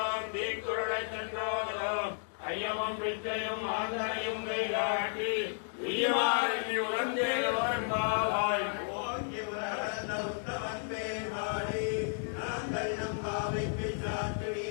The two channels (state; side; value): silent; right; digital silence